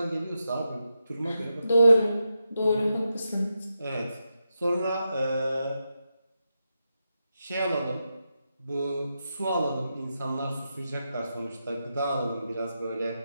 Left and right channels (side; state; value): both; inverted; correlation -0.87